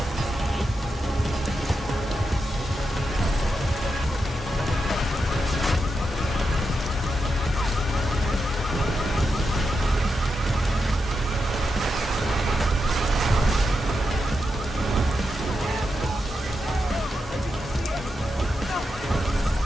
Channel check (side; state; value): both; normal; correlation 0.86